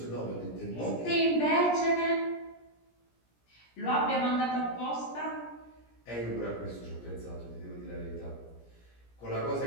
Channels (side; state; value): right; late; 17 ms